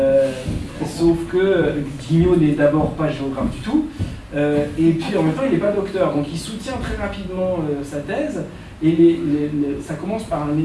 Sauf que Guignot n'est d'abord pas géographe du tout, et puis en même temps il n'est pas docteur, donc il soutient très rapidement sa thèse. Et ça commence par un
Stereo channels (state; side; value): identical; both; correlation 1.00